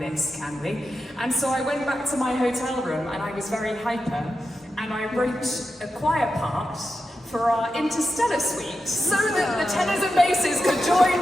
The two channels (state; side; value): normal; both; correlation 0.89